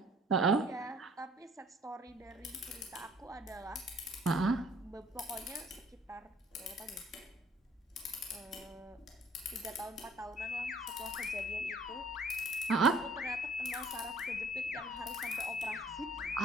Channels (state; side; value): normal; both; correlation 0.57